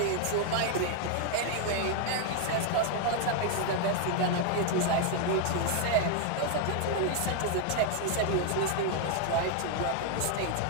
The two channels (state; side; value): different; both; correlation 0.00